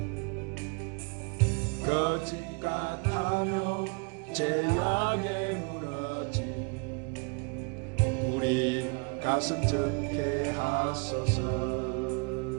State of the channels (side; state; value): left; quieter; 34.9 dB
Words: 거짓 같으며 죄악에 무너진 우리 가슴 적게 하소서.